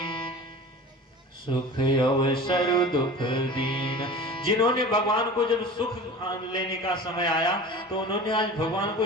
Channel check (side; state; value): both; normal; correlation 0.36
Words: सुख अवसर दुख दीन। जिन्होंने भगवान को जब सुख लेने का समय आया तो उन्होंने आज भगवान को